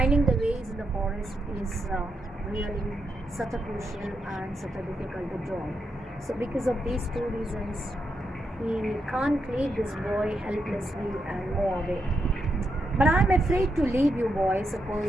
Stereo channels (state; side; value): normal; both; correlation 0.83